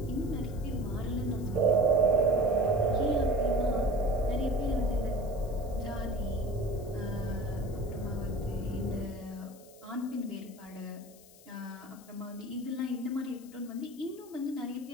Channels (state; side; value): noise; left; hiss, 23 dB below the sound